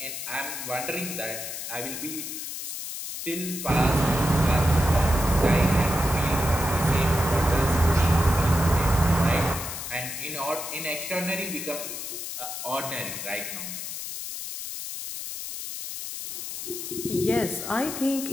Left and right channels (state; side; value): noise; left; hiss, 7 dB below the sound